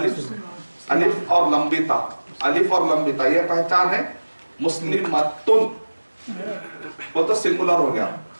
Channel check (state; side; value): inverted; both; correlation -1.00